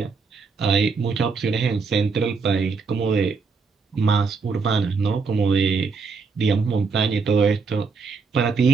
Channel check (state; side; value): quieter; left; 4.8 dB